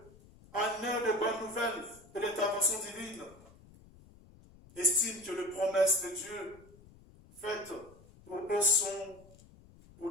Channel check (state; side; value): noise; left; rumble, 24 dB below the sound